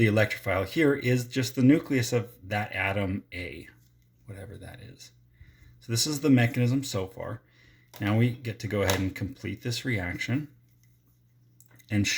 electrophile here is just the nucleus of that atom A, whatever that is. So this is the mechanism so far. Now we get to go ahead and complete this reaction and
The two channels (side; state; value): both; identical; correlation 1.00